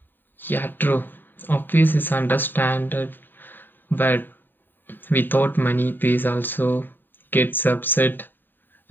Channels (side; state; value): right; late; 0.093 ms